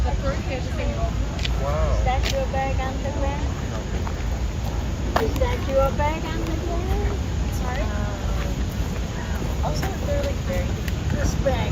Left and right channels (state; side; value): identical; both; correlation 1.00